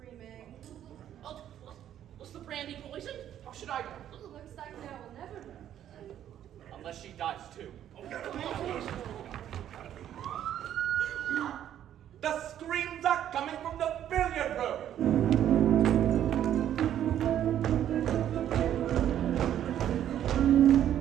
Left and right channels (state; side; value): quieter; left; 10.8 dB